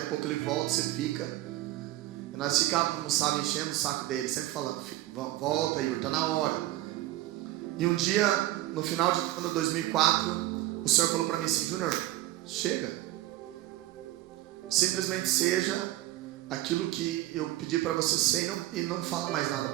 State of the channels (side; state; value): left; quieter; 15.8 dB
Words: a pouco ele volta, você fica. E nós ficávamos, sabe, enchendo o saco dele, sempre falando: volta, Igor, está na hora. E um dia, no final de 2004, o Senhor falou para mim assim: Júnior, chega, simplesmente seja aquilo que eu pedi para você ser, e não fala mais nada